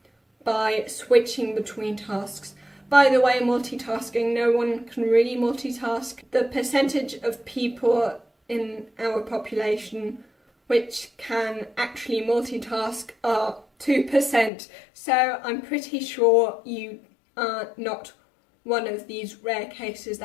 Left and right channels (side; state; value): right; drops out; at 14.5 s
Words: by switching between tasks. By the way, multitasking, no one can really multitask. The percentage of people in our population which can actually multitask are 2%, so I'm pretty sure you are not one of these rare cases